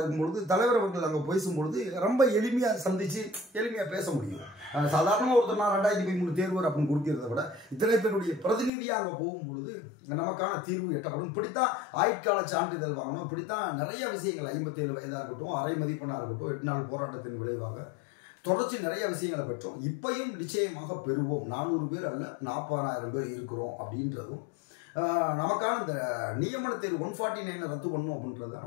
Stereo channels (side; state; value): right; drops out; at 8.7 s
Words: தலைவர் அவர்கள் அங்கே பேசும்பொழுது ரொம்ப எளிமையாக சந்தித்து எளிமையாக பேச முடியும். சாதாரணமாக ஒருத்தர் நான் 2013 தேர்வர் அப்படின்னு கொடுக்கிறத விட இத்தனை பேருடைய பிரதிநிதியாக அங்கே போகும்பொழுது நமக்கான தீர்வு எட்டப்படும். இப்படித்தான் ஆயுட்கால சான்றிதழ் வாங்கணும், இப்படித்தான் நிறைய விஷயங்கள் 57 வயதாக இருக்கட்டும், அரை மதிப்பெண்ணாக இருக்கட்டும், 8 நாள் போராட்டத்தின் விளைவாக தொடர்ச்சி நிறைய விஷயங்களை பெற்றோம். இப்பையும் நிச்சயமாக பெறுவோம். 400 பேர் அல்ல 40,000 பேர் இருக்கிறோம் அப்படின்றதும் நமக்கான இந்த நியமன தேர்வு 149 ரத்து பண்ணும் அப்படின்றது